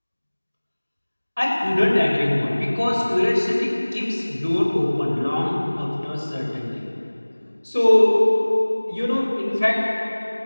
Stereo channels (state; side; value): inverted; both; correlation -1.00